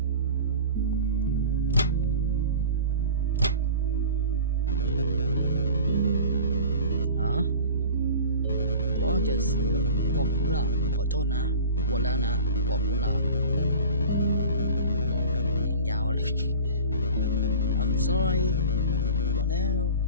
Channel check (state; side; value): inverted; both; correlation -0.39